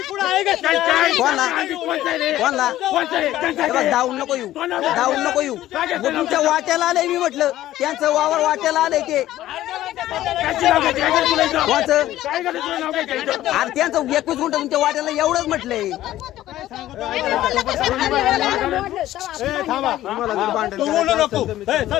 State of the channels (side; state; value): right; quieter; 14.1 dB